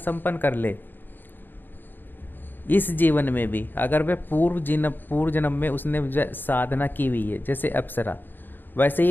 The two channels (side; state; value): right; late; 0.093 ms